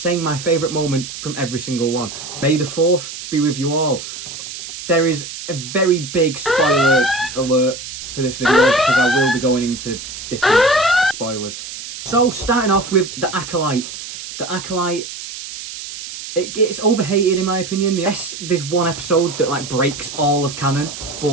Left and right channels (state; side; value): noise; right; hiss, 10 dB below the sound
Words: my favourite moment from every single one. May the 4th be with you all. There is a very big spoiler alert for this video, because I will be going into different spoilers. So, starting off with The Acolyte. The Acolyte, it's overhated in my opinion. Yes, there's one episode that like breaks all of canon,